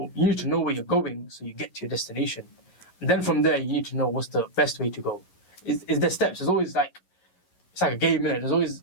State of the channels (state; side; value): late; right; 11 ms